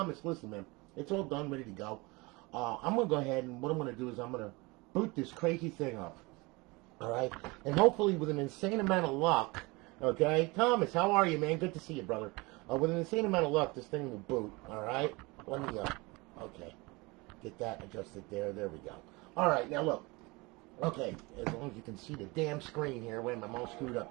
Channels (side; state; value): left; quieter; 24.9 dB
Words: listen, man, it's all done, ready to go. I'm going to go ahead, and what I'm going to do is I'm going to boot this crazy thing up, all right? And hopefully with an insane amount of luck, okay? Thomas, how are you, man? Good to see you, brother. With an insane amount of luck, this thing will boot, all right? Let me, okay, get that adjusted there. There we go. All right, now look. Okay, as long as you can see the damn screen here. Wait, I'm all screwed